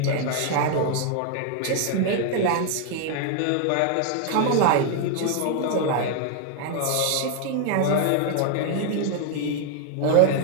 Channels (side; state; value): both; different; correlation 0.00